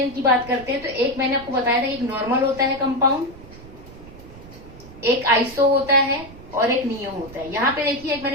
की बात करते हैं तो एक मैंने आपको बताया था, एक नॉर्मल होता है कंपाउंड, एक आइसो होता है और एक नियो होता है। यहाँ पे देखिए एक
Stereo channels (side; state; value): right; noise; rumble, 18 dB below the sound